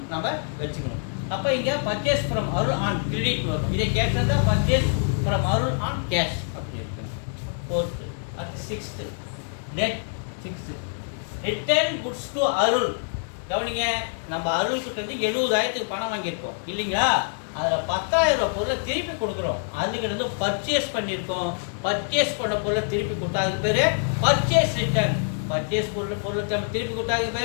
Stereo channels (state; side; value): silent; right; digital silence